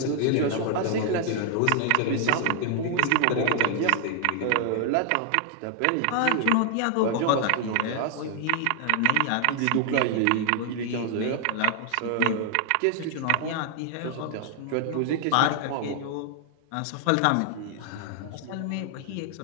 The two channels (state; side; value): different; both; correlation 0.00